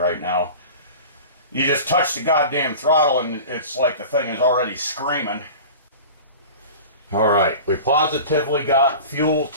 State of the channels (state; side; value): inverted; both; correlation -0.36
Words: now. You just touch the goddamn throttle and it's like the thing is already screaming. Alright, we positively got fuel